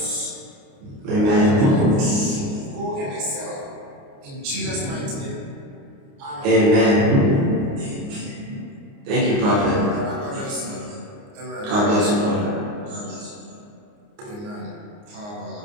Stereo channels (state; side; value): late; left; 29 ms